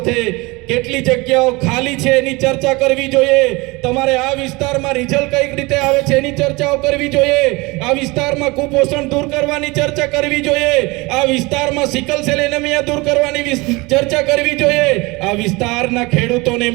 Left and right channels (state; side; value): quieter; left; 24.2 dB